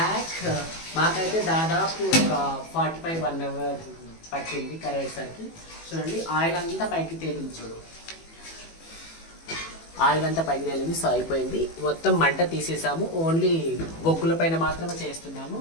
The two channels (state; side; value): late; right; 18 ms